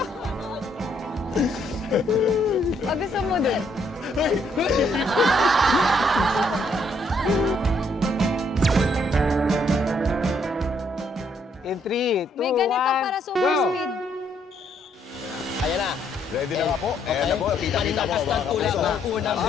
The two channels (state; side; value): normal; both; correlation 0.70